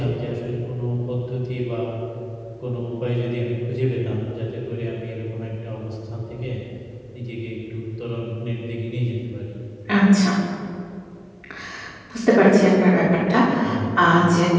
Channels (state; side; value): identical; both; correlation 1.00